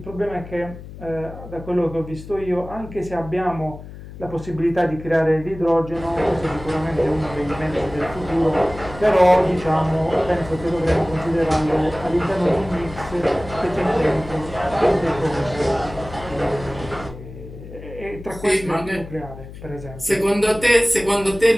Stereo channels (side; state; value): left; noise; hum, 14 dB below the sound